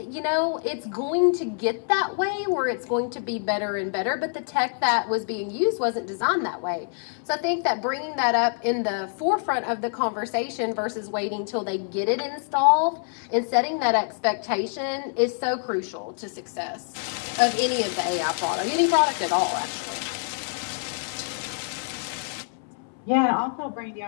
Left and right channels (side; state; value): right; silent; 61 dB below the other